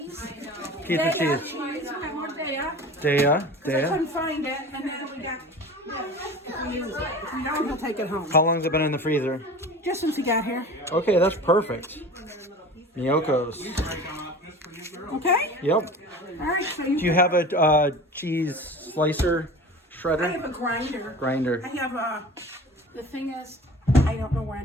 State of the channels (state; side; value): normal; both; correlation 0.37